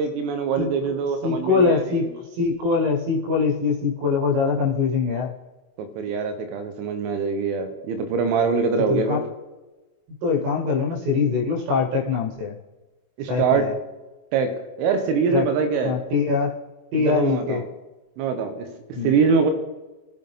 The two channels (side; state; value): left; late; 24 ms